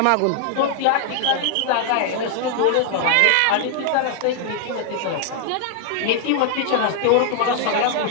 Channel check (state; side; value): different; both; correlation 0.00